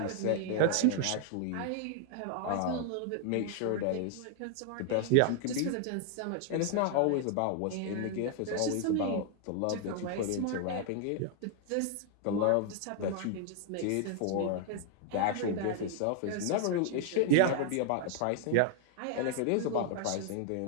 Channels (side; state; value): both; different; correlation 0.00